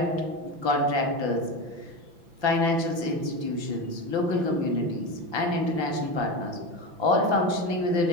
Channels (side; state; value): left; late; 5.9 ms